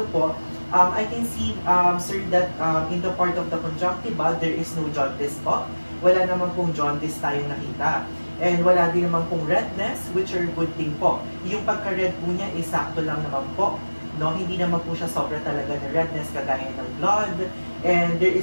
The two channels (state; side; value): inverted; both; correlation -1.00